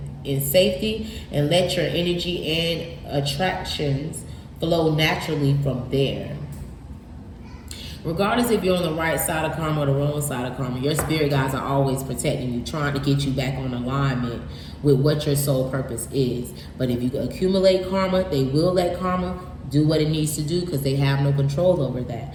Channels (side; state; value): both; identical; correlation 1.00